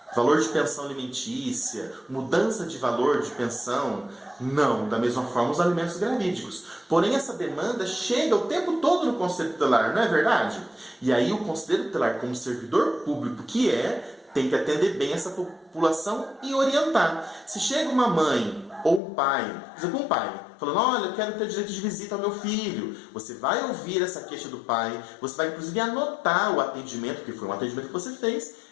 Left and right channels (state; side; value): drops out; right; at 19.0 s